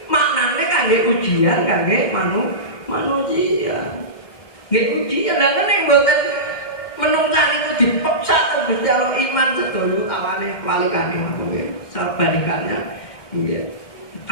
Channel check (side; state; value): right; late; 2.1 ms